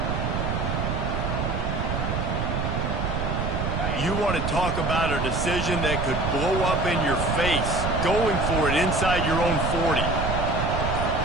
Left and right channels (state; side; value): noise; right; rumble, 1 dB below the sound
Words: You want to talk about a decision that could blow up in your face. Going for it inside your own 40.